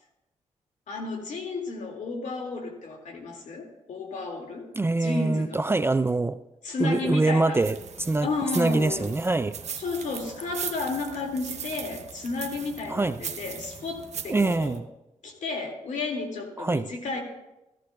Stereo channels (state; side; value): normal; both; correlation 0.77